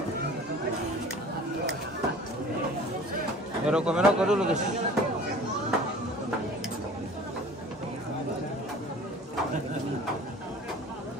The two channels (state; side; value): normal; both; correlation 0.45